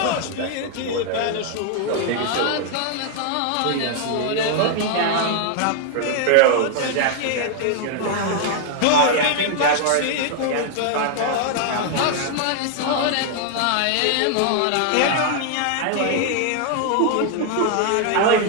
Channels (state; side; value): different; both; correlation 0.00